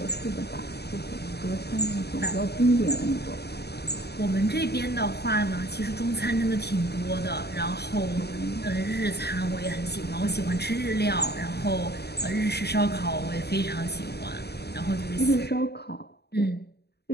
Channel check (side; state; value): right; late; 0.48 ms